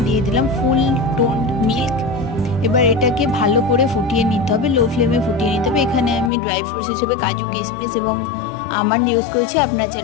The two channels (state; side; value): drops out; right; at 6.3 s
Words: দিয়ে দিলাম ফুল টোন্ড মিল্ক। এবার এটাকে ভালো করে ফুটিয়ে নিতে হবে, লো ফ্লেমে ফুটিয়ে নিতে হবে। এখানে আমি ড্রাই ফ্রুটস হিসেবে কাজু কিশমিশ এবং আমন্ড ইউজ করেছি। আপনারা